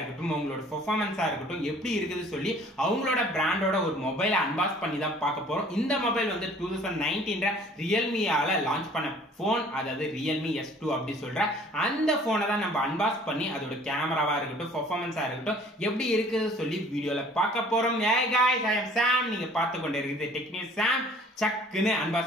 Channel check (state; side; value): normal; both; correlation 0.53